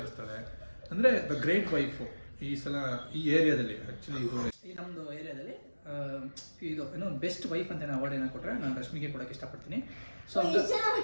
ಅಂದರೆ ದ ಗ್ರೇಟ್ ವೈಫು ಈ ಸಲ ಈ ಏರಿಯಾದಲ್ಲಿ. ಆ್ಯಕ್ಚುಲಿ ಇದು ಈ ನಮ್ಮದು ಏರಿಯಾದಲ್ಲಿ ಇದು ಏನೋ ಬೆಸ್ಟ್ ವೈಫ್ ಅಂತ ಅವಾರ್ಡ್ ಏನೋ ಕೊಟ್ಟರೆ ನಾನು ರಶ್ಮಿಗೆ ಕೊಡೋಕ್ಕೆ ಇಷ್ಟಪಡ್ತೀನಿ. ಸೊ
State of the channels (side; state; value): both; inverted; correlation -1.00